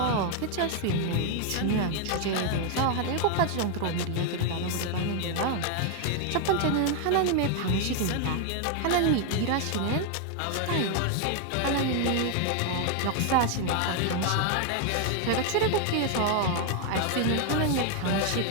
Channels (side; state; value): both; different; correlation 0.01